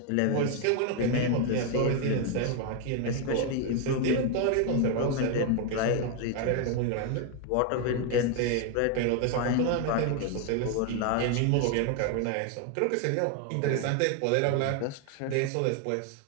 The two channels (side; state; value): both; different; correlation 0.01